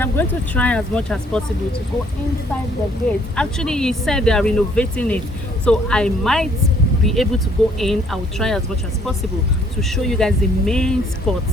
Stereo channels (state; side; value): normal; both; correlation 0.63